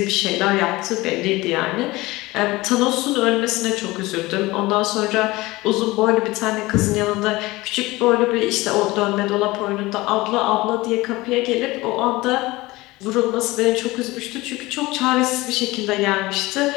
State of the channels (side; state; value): right; quieter; 20.4 dB